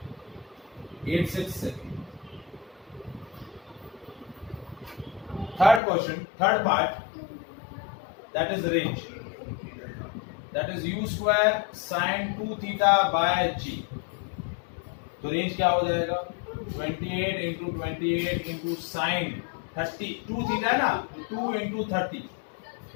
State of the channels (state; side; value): drops out; right; at 5.8 s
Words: second. Third question, third part, that is range, that is u square sine 2 theta by g। तो रेंज क्या हो जाएगा, 28 इंटू 28 इंटू साइन 30, 2 थीटा है ना, 2 इंटू 30